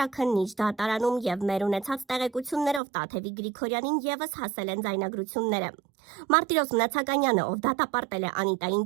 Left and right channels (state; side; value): drops out; left; at 2.8 s